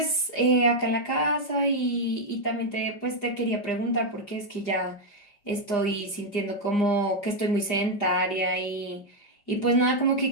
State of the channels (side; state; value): right; late; 4.9 ms